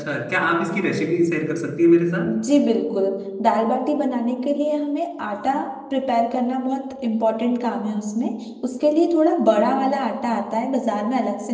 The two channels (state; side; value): identical; both; correlation 1.00